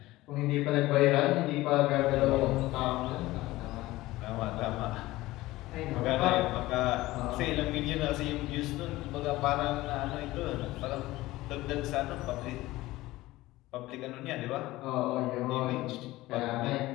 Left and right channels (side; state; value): right; quieter; 18.0 dB